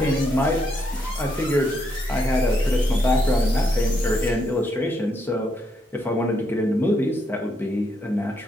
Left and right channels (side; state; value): both; normal; correlation 0.77